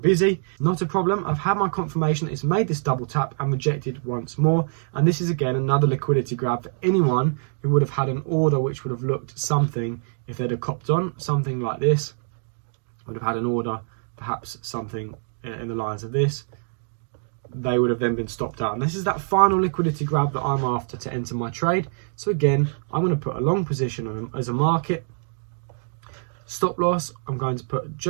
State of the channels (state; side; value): silent; left; digital silence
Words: Not a problem. I've had my confirmation that it's made this double tap and rejected once more. And this is again another liquidity grab for anyone who would have had an order which would have looked something, if they'd have copped on, something like this. Would have had an order, perhaps something in the lines of this. They would have then been stopped out. And this is that final liquidity grab that I'm after to enter my trade. So again, I'm going to put a long position on as a market. Stop loss, I'm going to put